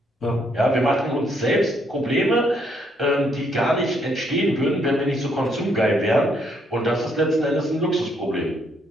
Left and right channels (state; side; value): normal; both; correlation 0.71